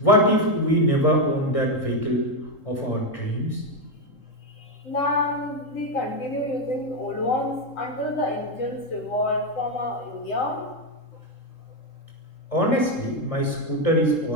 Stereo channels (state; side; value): late; right; 3.8 ms